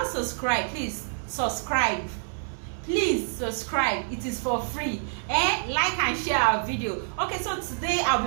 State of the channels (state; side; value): silent; left; 60 dB below the other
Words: subscribed, please subscribe. Please subscribe. It is for free. Like and share our video. Okay, so today